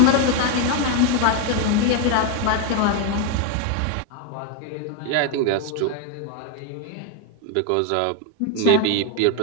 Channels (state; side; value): different; both; correlation 0.01